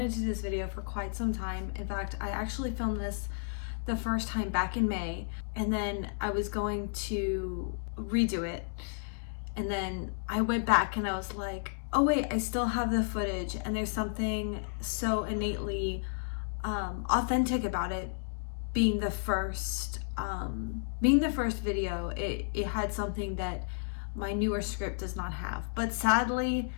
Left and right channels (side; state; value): right; silent; digital silence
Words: to do this video for quite some time. In fact, I actually filmed this the first time back in May, and then I was going to redo it. And then I went back and I was like, oh wait, I still have the footage, and there's something so innately authentic about it being the first video. It had something that my newer script does not have. But sadly,